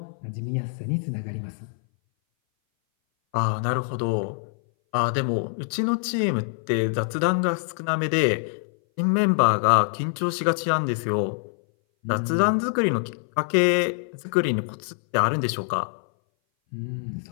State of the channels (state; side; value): silent; right; 59 dB below the other